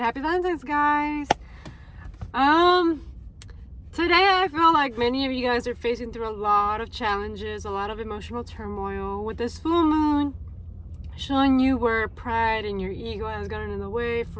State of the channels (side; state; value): both; identical; correlation 1.00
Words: happy Valentine's, guys. Today I feel like many of you guys are facing through a lot of challenges, a lot of emotional turmoil with this full moon showing you where pride and your ego has gotten in the way.